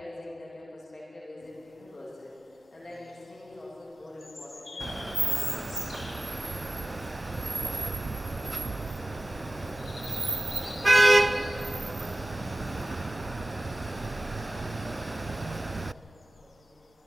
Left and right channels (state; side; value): normal; both; correlation 0.97